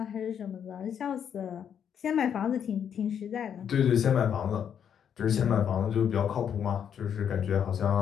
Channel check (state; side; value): quieter; right; 8.4 dB